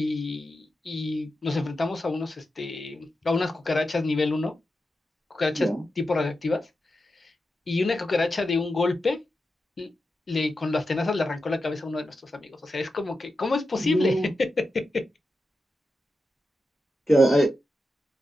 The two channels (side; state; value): both; normal; correlation 0.90